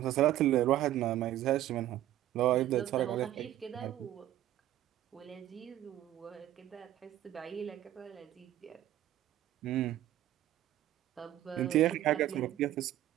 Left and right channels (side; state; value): left; quieter; 13.3 dB